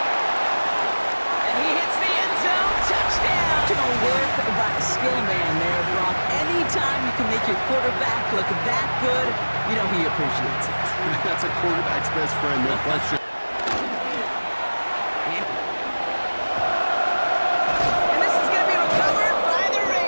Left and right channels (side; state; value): both; inverted; correlation -1.00